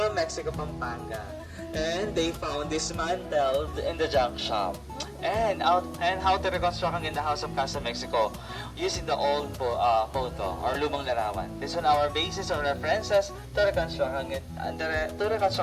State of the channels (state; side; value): identical; both; correlation 1.00